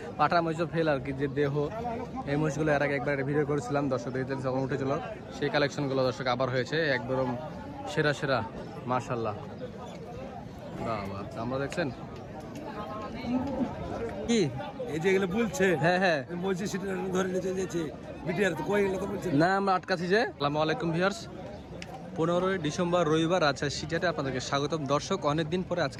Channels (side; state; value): both; identical; correlation 1.00